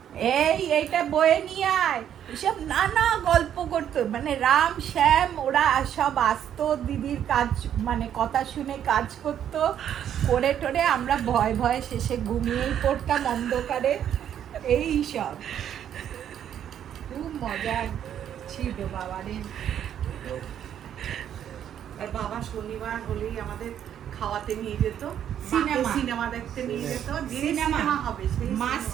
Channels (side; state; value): left; quieter; 9.8 dB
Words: এইটা বয়ে নিয়ে আয়। এসব নানা গল্প করতো, মানে রাম শ্যাম ওরা সব আসতো, দিদির কাজ মানে কথা শুনে কাজ করতো, করে টোরে আমরা ভয় ভয়ে শেষে ঘুমিয়েই পড়তাম অন্ধকারে। এই সব খুব মজা ছিল বাবারে। আর বাবা শনিবার হলেই আমাদের খাওয়াতে নিয়ে যেত, সিনেমা। সিনেমা দেখতে নিয়ে যেত, যে সিনেমা। সিনেমা হবে সেই মা